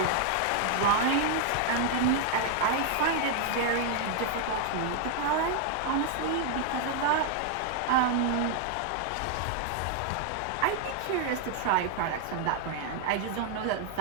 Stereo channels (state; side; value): different; both; correlation 0.00